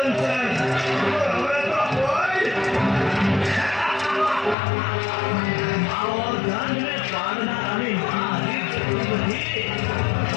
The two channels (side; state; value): right; drops out; at 4.5 s